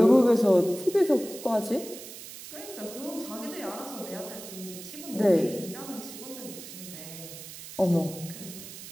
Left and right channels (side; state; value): right; noise; hiss, 13 dB below the sound